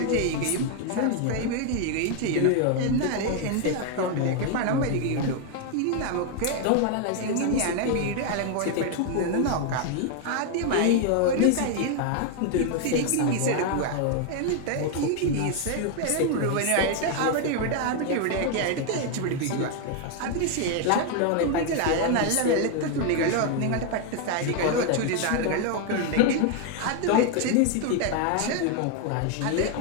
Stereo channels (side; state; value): both; different; correlation 0.01